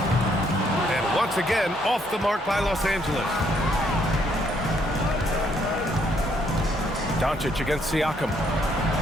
And once again, off the mark by Los Angeles. Doncic against Siakam.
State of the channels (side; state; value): both; normal; correlation 0.70